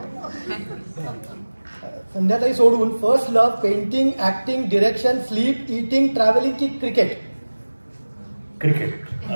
संध्याताई सोडून first love, painting, acting, direction, sleep, eating, travelling की क्रिकेट? क्रिकेट.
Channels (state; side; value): inverted; both; correlation -1.00